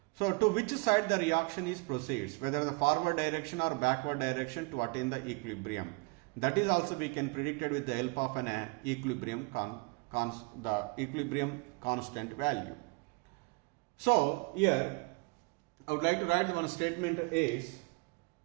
So to which side the reaction is proceeds, whether the forward direction or backward direction to attain the equilibrium. That is also we can predict it with the help of an equilibrium equilibrium constant value. So here I would like to write one statement is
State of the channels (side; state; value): left; quieter; 29.4 dB